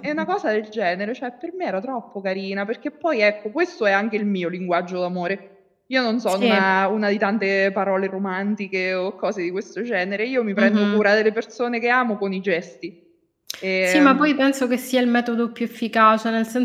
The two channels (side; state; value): both; identical; correlation 1.00